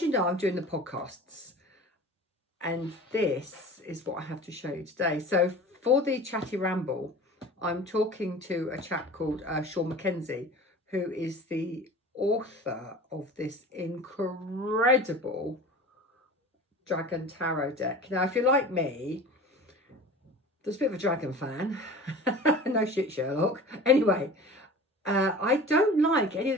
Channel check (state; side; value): normal; both; correlation 0.39